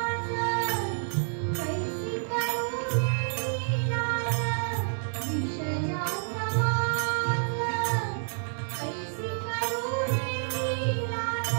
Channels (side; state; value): left; silent; digital silence